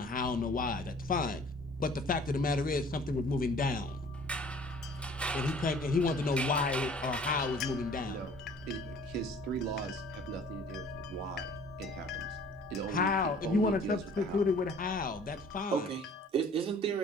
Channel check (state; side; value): normal; both; correlation 0.51